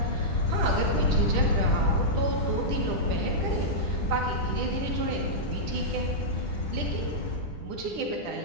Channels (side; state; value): left; late; 10 ms